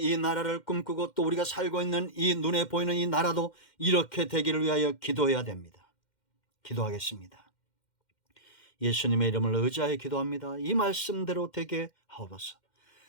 나라를 꿈꾸고 또 우리가 살고 있는 이 눈에 보이는 이 나라도 이렇게 되기를 위하여 기도해야 됩니다. 기도하겠습니다. 예수님의 이름을 의지하여 기도합니다. 이 말씀대로 되게 하옵소서.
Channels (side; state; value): right; late; 2.1 ms